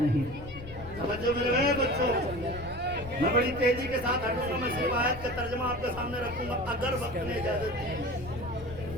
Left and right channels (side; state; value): left; noise; rumble, 14 dB below the sound